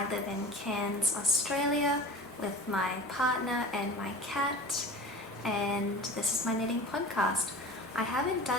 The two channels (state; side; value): normal; both; correlation 0.38